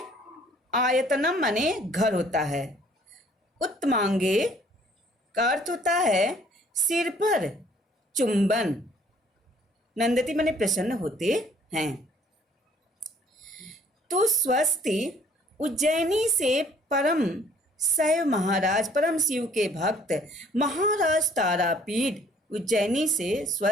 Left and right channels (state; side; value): normal; both; correlation 0.58